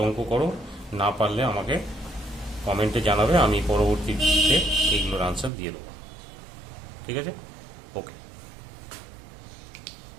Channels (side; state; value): left; drops out; at 5.5 s